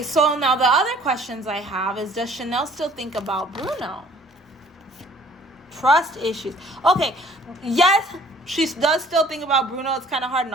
So now the other questions I have is, does Chanel still think about Bruno? Trust issues. Okay, yes, she does still think about Bruno. It's kind of hard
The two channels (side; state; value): both; normal; correlation 0.55